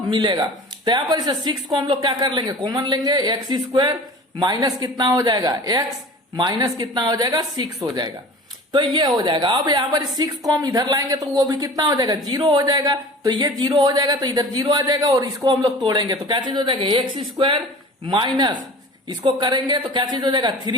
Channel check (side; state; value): both; normal; correlation 0.40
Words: मिलेगा। तो यहां पर इसे 6 को हम लोग क्या कर लेंगे, कॉमन लेंगे, x² माइनस कितना हो जाएगा, x माइनस कितना हो जाएगा, 6 हो जाएगा। तो ये हो जाएगा। अब यहाँ पर 6 को हम इधर लाएंगे तो वो भी कितना हो जाएगा, 0 हो जाएगा। तो ये 0 हो जाएगा, तो इधर 0 आ जाएगा, और इसको हम लोग तोड़ेंगे तो क्या चीज हो जाएगा, x² माइनस इसको करेंगे तो क्या चीज हो जाएगा,